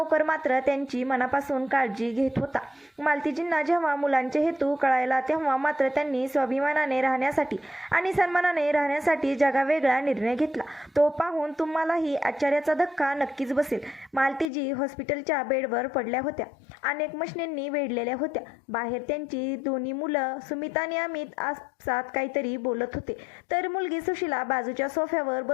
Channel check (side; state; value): right; drops out; at 14.5 s